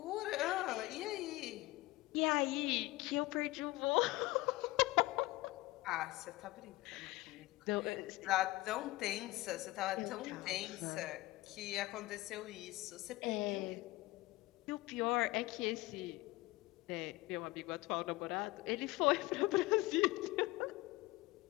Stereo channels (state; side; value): quieter; right; 19.8 dB